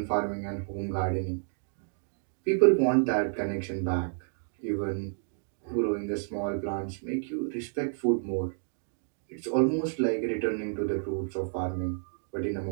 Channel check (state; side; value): silent; left; digital silence